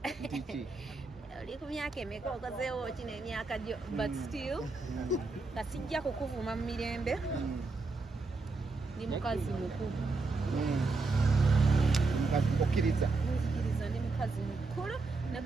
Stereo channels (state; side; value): quieter; left; 3.8 dB